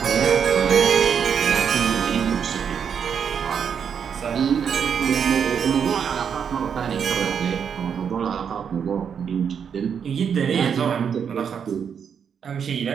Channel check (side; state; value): left; quieter; 7.3 dB